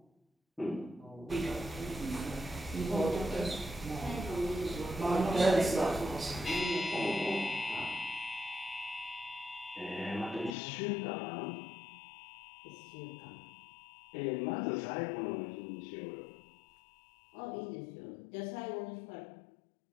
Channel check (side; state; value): right; drops out; at 10.6 s